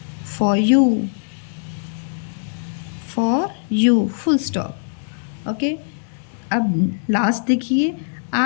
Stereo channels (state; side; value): silent; right; digital silence